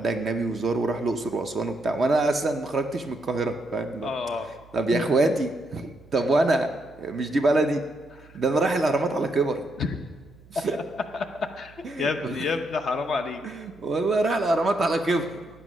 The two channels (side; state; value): right; noise; hum, 25 dB below the sound